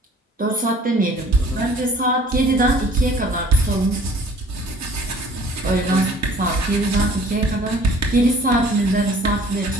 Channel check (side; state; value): both; normal; correlation 0.52